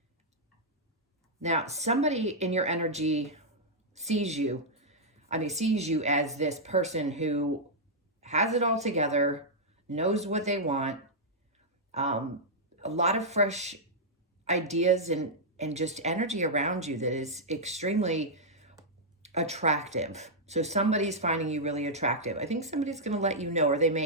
Now, somebody in your energy sees you as this person who has it all together, knows what they want, a lot of fresh ideas and just energy around you that is extremely attractive. So somebody's finding you really attractive. I think somebody's going to let you know, or they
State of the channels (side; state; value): both; normal; correlation -0.07